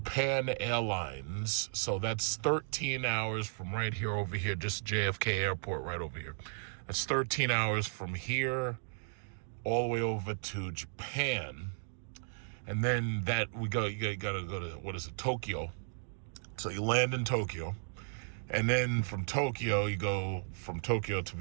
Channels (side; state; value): left; silent; digital silence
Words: Airlines, so that's 13 hours from right here over here, just JFK Airport right over here. That's 13 hours from here all the way over to Japan. And then that you gotta go to, what is it, Tokyo. So you land in Tokyo. And then from Tokyo, you go from Tokyo to